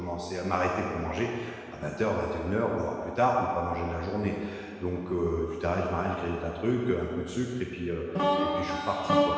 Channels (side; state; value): both; identical; correlation 1.00